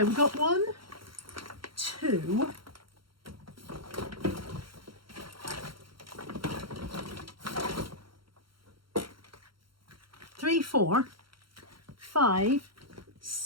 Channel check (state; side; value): late; left; 0.73 ms